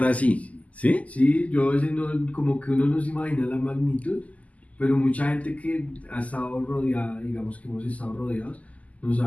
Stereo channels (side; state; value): right; late; 0.072 ms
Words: así. ¿Sí? Sí, yo a veces como que uno no se imagina la magnitud, pero mucha gente que ha estado rodeada, digamos que hemos estado rodeados, nos